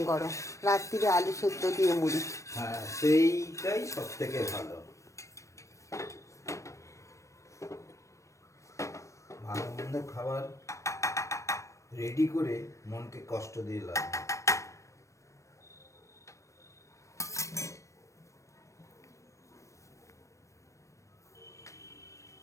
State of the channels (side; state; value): right; late; 0.15 ms